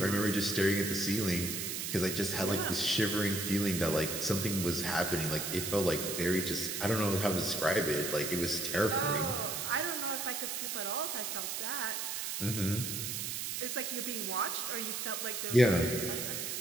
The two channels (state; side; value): noise; right; hiss, 3 dB below the sound